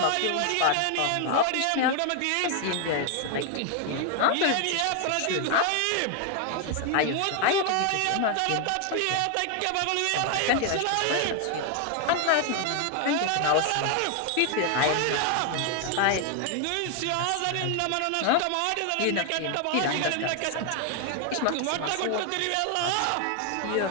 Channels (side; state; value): both; different; correlation 0.01